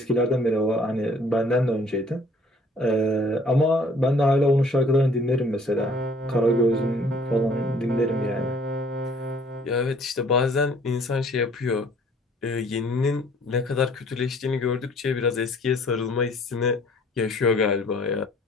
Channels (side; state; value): both; normal; correlation 0.57